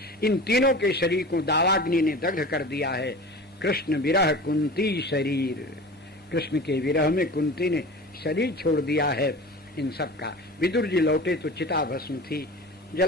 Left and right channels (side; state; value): both; normal; correlation 0.36